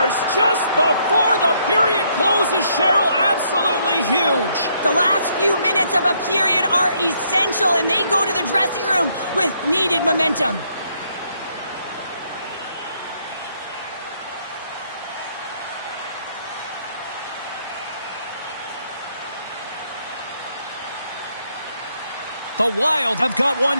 just before the period closes, Cheryl. Absolutely huge. The last few minutes of a period are essential, and they go to the dressing room with needed momentum. The Wild have got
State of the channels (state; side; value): inverted; both; correlation -0.71